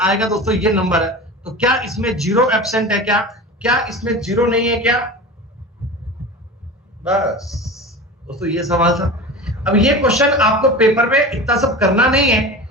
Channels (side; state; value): both; normal; correlation 0.32